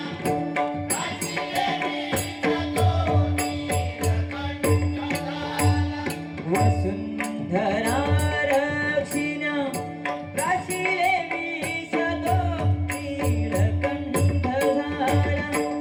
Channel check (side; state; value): both; identical; correlation 1.00